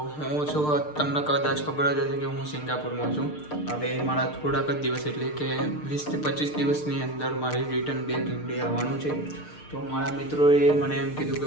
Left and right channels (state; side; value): late; right; 6.6 ms